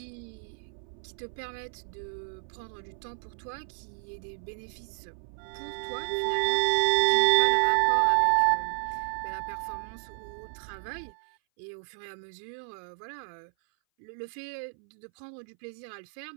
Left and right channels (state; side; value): silent; left; 57 dB below the other